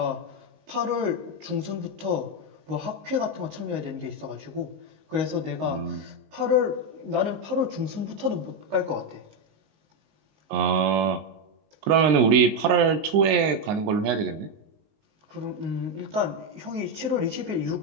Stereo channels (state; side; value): late; left; 19 ms